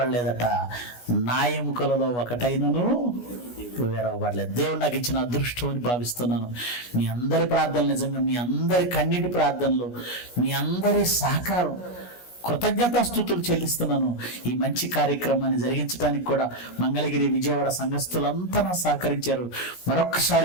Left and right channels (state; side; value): late; right; 17 ms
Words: నా ఎముకలలో ఒకటైనను విరవబడలేదు. దేవుడు నాకు ఇచ్చిన అదృష్టం అని భావిస్తున్నాను. మీ అందరి ప్రార్థనలు, నిజంగా మీ అందరి కన్నీటి ప్రార్థనలు, మీ అందరి సహకారం, కృతజ్ఞతాస్తుతులు చెల్లిస్తున్నాను. ఈ మంచి కార్యక్రమాన్ని జరిగించడానికి కూడా మంగళగిరి, విజయవాడ సంఘస్థులంతా సహకరించారు.